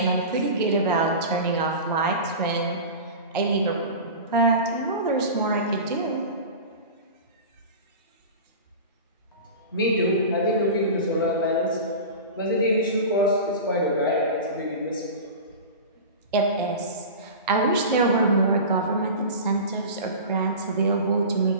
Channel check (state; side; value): inverted; both; correlation -0.31